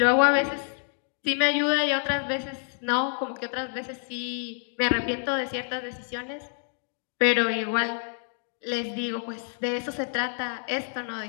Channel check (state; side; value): silent; right; 57 dB below the other